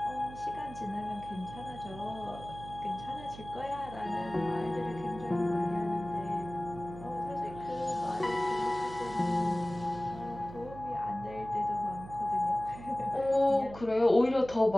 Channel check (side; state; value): right; noise; hum, 14 dB below the sound